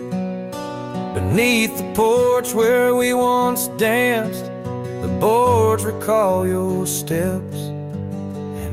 Beneath the porch where we once danced, the boards recall your steps,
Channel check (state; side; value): identical; both; correlation 1.00